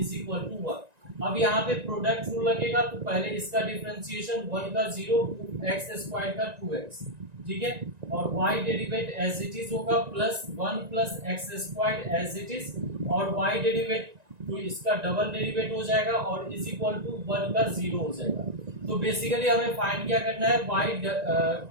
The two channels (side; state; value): left; late; 1.9 ms